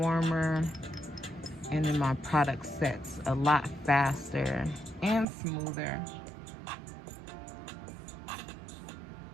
and then my product sets a lot faster and smoother.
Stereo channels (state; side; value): drops out; left; at 5.2 s